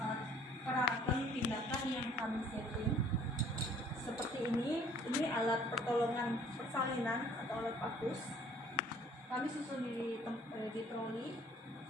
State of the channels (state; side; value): normal; both; correlation 0.56